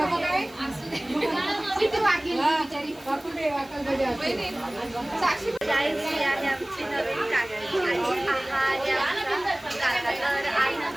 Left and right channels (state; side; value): noise; left; hiss, 23 dB below the sound